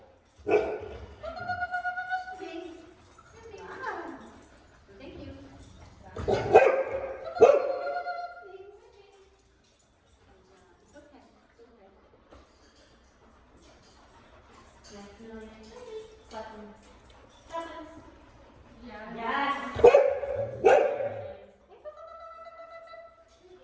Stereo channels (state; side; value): identical; both; correlation 1.00